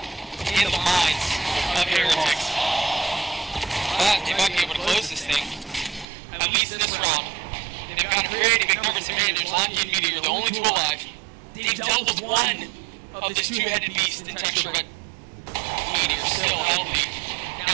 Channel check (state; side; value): drops out; left; at 6.1 s